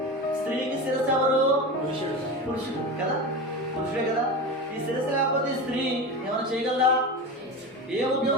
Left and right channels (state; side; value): normal; both; correlation 0.25